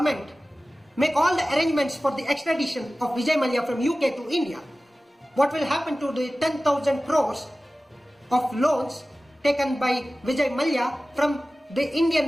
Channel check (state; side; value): normal; both; correlation 0.96